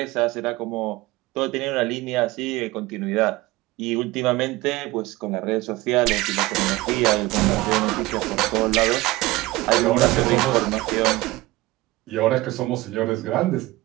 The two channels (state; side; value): quieter; left; 19.6 dB